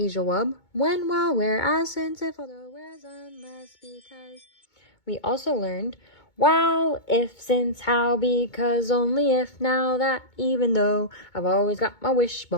wub, when, while, where, as, since, if, although, whereas, unless, because. We also learned while, if, since, how, because, only, if, now, that, even though, I've always got my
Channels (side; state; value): right; late; 2.2 ms